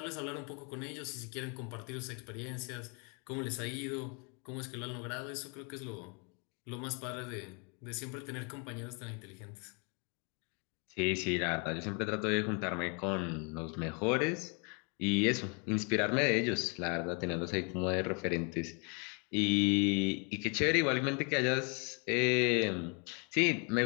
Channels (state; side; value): quieter; right; 35.1 dB